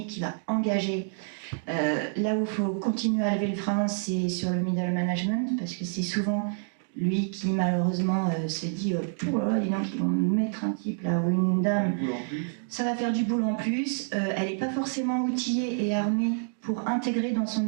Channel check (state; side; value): silent; left; digital silence